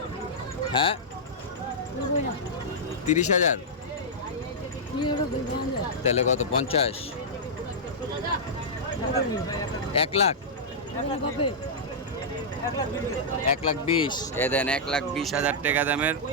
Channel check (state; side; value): normal; both; correlation -0.10